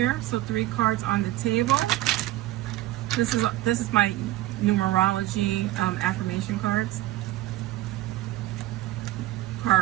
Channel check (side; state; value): left; quieter; 15.9 dB